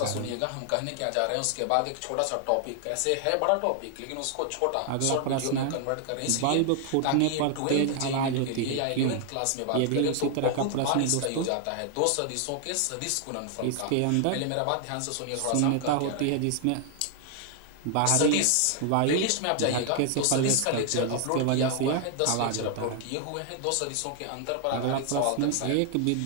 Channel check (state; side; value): different; both; correlation 0.00